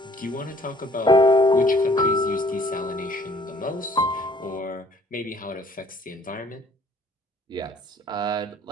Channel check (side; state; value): both; normal; correlation 0.58